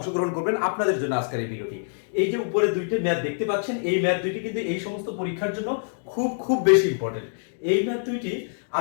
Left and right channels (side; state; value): right; silent; digital silence